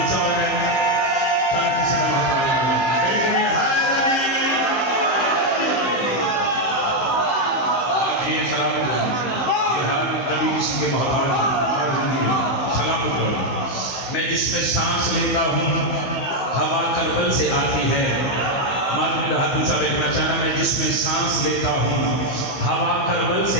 मैं जिसमें सांस लेता हूँ हवा करबल से आती है। मालूम हाथ ऊंचा देखना चाहना मैं जिसमें सांस लेता हूँ हवा करबल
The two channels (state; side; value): late; right; 15 ms